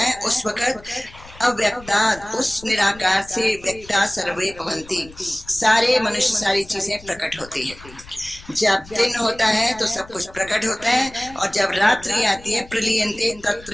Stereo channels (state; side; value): noise; left; rumble, 20 dB below the sound